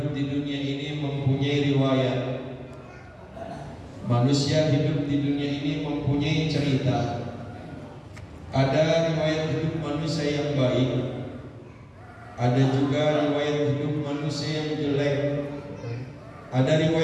di dunia ini mempunyai riwayat. Manusia hidup di dunia ini mempunyai cerita. Ada riwayat hidup manusia yang baik, ada juga riwayat hidup manusia yang jelek. Ada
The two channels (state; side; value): identical; both; correlation 1.00